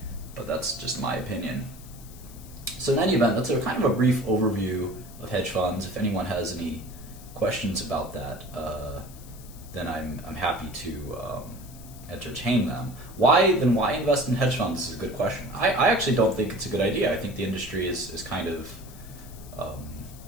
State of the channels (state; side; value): noise; left; hiss, 20 dB below the sound